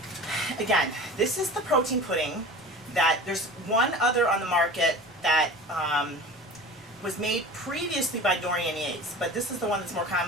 Again, this is the protein pudding that there's one other on the market that was made previously by Dorian Yates, but this is the one that's more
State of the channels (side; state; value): both; normal; correlation 0.37